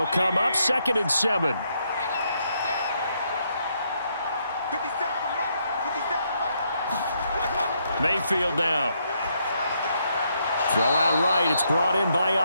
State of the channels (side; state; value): both; inverted; correlation -0.76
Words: come up 2nd and 7. Mayfield now. Throw out right. It's brought in by